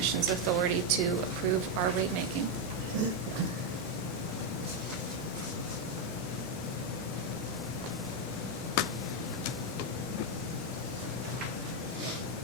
authority to approve our rate making.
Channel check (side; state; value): both; normal; correlation 0.03